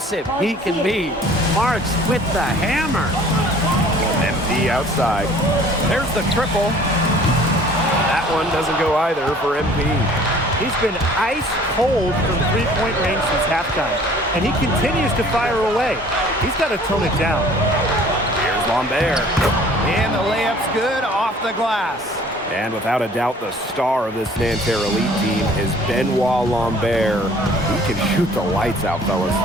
he can be. Marks with the hammer. MP outside. There's the triple. That one doesn't go either for MP. He's been ice cold from three-point range since halftime, and he continues to fire away. He's got to tone it down. Here's Lambert. And the layup's good off the glass. And without a doubt, the star of this Nanterre Elite team is Benoit Lambert. He can shoot the lights out, fellas.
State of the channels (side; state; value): both; normal; correlation 0.52